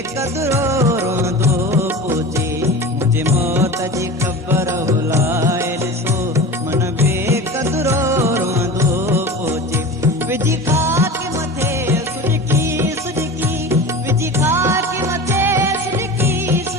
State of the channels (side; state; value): both; normal; correlation 0.32